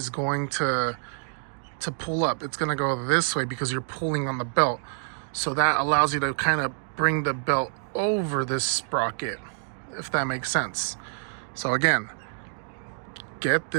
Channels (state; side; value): silent; left; digital silence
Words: going to pull up. It's going to go this way because you're pulling on the belt. So that allows you to kind of bring the belt over this sprocket, if that makes sense. So again, get